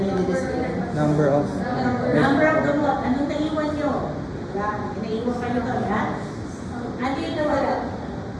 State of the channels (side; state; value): both; identical; correlation 1.00